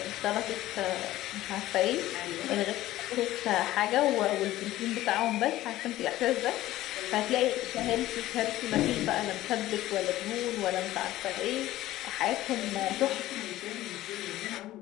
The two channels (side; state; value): right; quieter; 15.4 dB